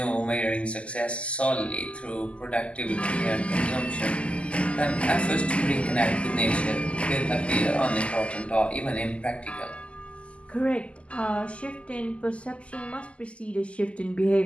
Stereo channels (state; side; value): late; right; 0.057 ms